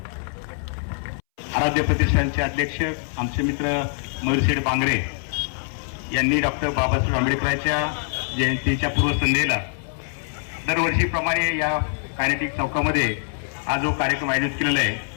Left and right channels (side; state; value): right; silent; 63 dB below the other